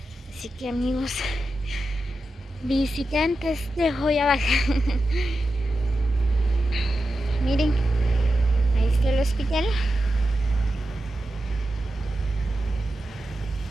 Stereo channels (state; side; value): normal; both; correlation 0.90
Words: Así que amigos visitantes de Joyabaj, miren, ahí está el hospital.